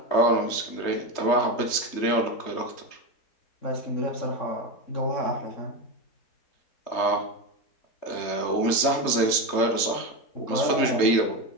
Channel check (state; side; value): late; right; 3.3 ms